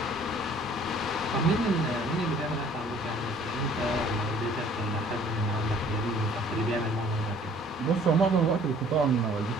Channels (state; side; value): normal; both; correlation 0.55